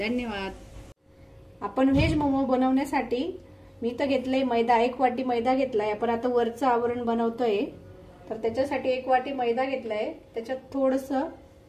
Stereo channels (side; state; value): both; identical; correlation 1.00